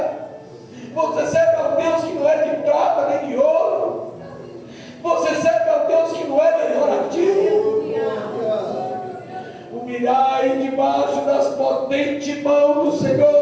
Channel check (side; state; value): both; identical; correlation 1.00